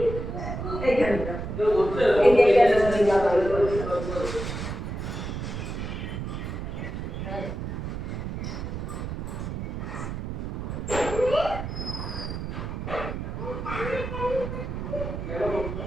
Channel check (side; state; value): right; noise; rumble, 5 dB below the sound